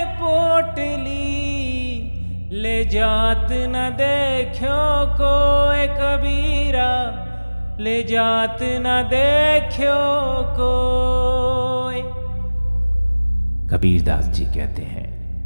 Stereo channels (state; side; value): inverted; both; correlation -1.00